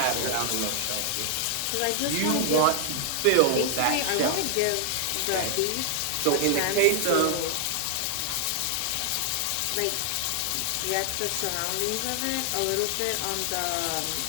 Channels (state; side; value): different; both; correlation 0.00